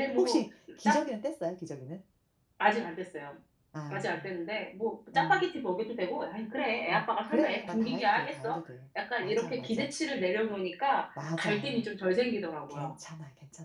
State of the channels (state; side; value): identical; both; correlation 1.00